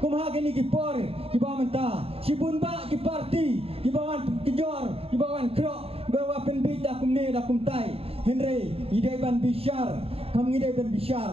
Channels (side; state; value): left; late; 0.28 ms